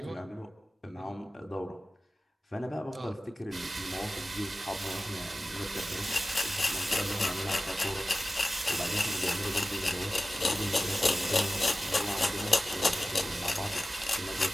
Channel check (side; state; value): both; normal; correlation 0.95